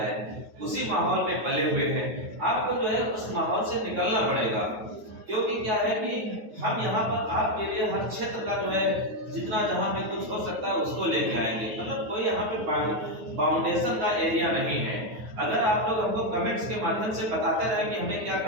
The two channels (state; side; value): late; left; 9.3 ms